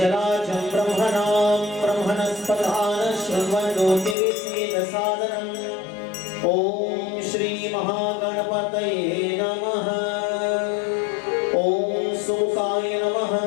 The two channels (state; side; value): drops out; right; at 4.2 s